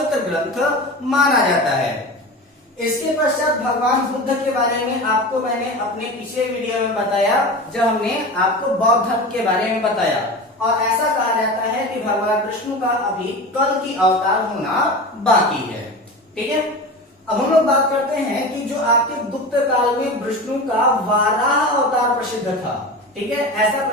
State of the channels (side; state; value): both; normal; correlation 0.29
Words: ग्रंथ माना जाता है। इसके पश्चात भगवान बुद्ध के बारे में आपको मैंने अपने पिछले वीडियो में बताया, जब हमने आपको बौद्ध धर्म के बारे में बताया, और ऐसा कहा जाता है कि भगवान विष्णु का अभी कल की अवतार होना बाकी है। ठीक है, अब हम लोग बात करते हैं कि जो आपके गुप्त काल में विष्णु का वाराह अवतार प्रसिद्ध था। ठीक है, ऐसा